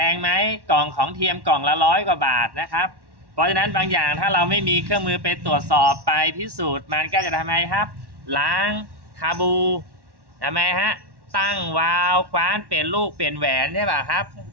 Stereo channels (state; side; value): late; left; 1.1 ms